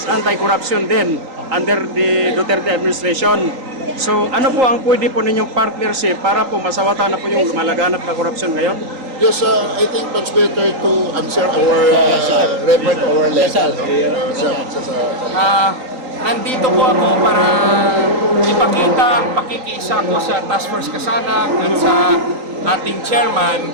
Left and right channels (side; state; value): left; late; 3.8 ms